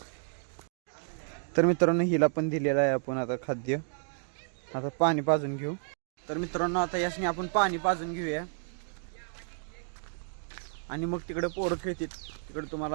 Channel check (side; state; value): left; silent; digital silence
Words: तर मित्रांनो, हिला पण दिलेलं आहे आपण आता खाद्य. आता पाणी पाजून घेऊ. तर मित्रांनो, आता यासनी आपण पाणी पाजून घेऊया आणि मग तिकडे पोरं खेळतात. तिकडे